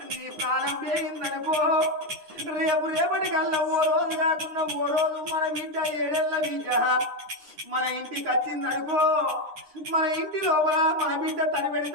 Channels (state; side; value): late; left; 9.8 ms